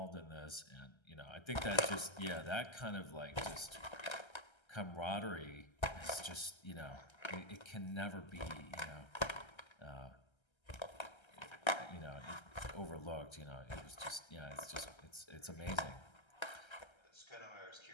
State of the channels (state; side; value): late; right; 1.3 ms